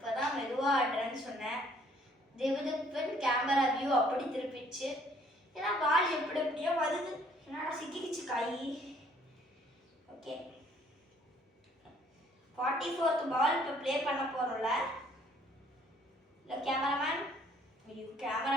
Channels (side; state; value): both; normal; correlation 0.61